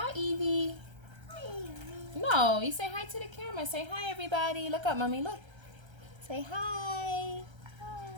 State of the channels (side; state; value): left; late; 1.3 ms